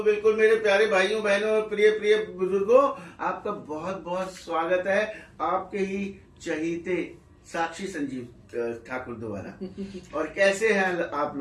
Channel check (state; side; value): identical; both; correlation 1.00